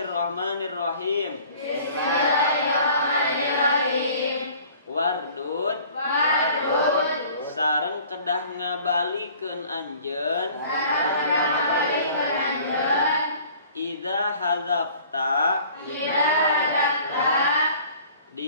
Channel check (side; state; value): both; inverted; correlation -0.50